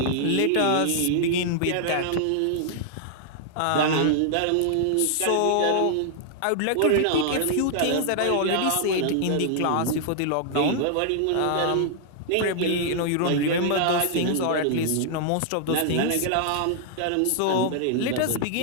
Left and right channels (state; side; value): different; both; correlation -0.01